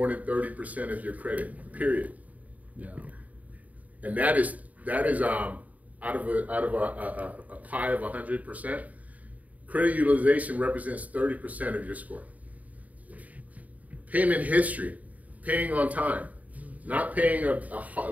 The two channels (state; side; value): late; left; 0.073 ms